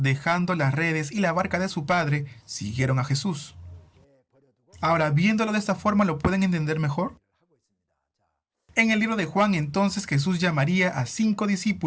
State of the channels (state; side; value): identical; both; correlation 1.00